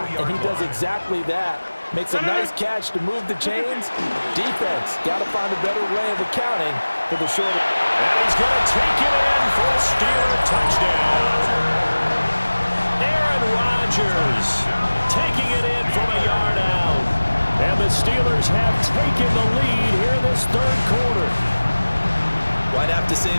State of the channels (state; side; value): inverted; both; correlation -1.00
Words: and he does exactly that. Makes a nice catch to move the chains. Defense got to find a better way of accounting for the short. And he's going to take it in for a Steeler touchdown. Aaron Rodgers taking it in from a yard out. And the Steelers have taken the lead here in this third quarter. Right have to say